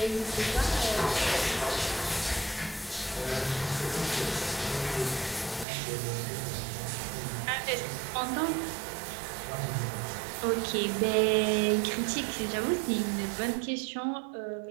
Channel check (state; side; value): drops out; left; at 5.7 s